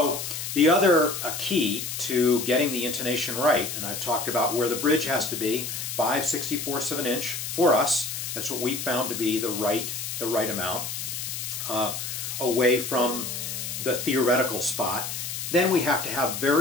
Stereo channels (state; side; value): noise; left; hiss, 5 dB below the sound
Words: the other key to getting the intonation right, and I've talked about where the bridge has to be, 5/64 of an inch for us. That's what we found to be the right amount, away from the theoretical spot. Then we have to have